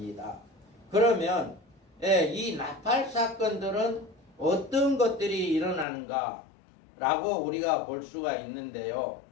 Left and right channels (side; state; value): right; drops out; at 5.9 s